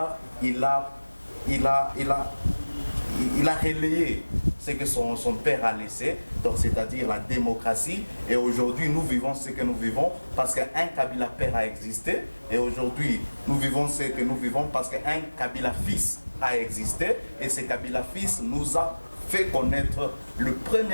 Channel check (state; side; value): inverted; both; correlation -1.00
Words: il a relayé ce que son père a laissé, donc c'est-à-dire la démocratie. Et aujourd'hui, nous vivons ce que nous vivons parce qu'un Kabila père a existé. Et aujourd'hui, nous vivons ce que nous vivons parce qu'un Kabila fils a existé. Et ce Kabila fils nous a fait connaître les